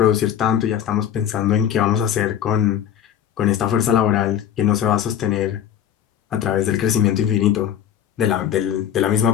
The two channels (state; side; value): quieter; right; 9.8 dB